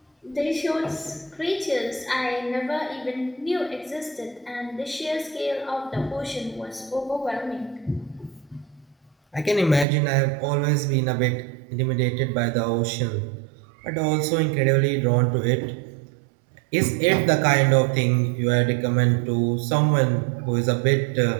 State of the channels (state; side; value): drops out; left; at 9.9 s